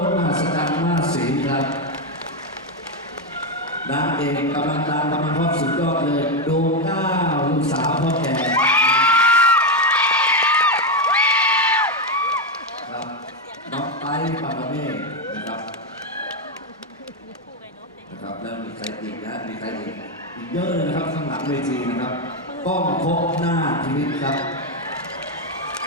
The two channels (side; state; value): both; normal; correlation 0.06